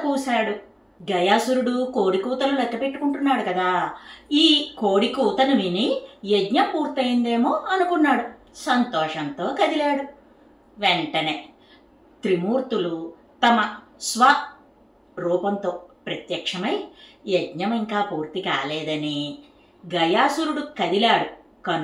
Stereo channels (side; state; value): both; identical; correlation 1.00